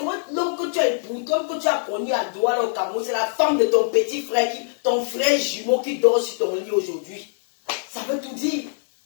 l'homme que tu as épousé, l'homme que tu as connu à Douala au Cameroun, c'est la femme de ton petit frère, ton frère jumeau qui dort sur ton lit aujourd'hui. Ça veut tout dire.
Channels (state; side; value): silent; right; digital silence